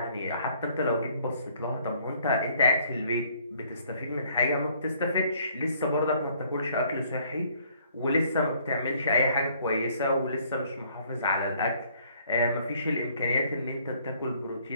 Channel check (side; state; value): both; inverted; correlation -0.62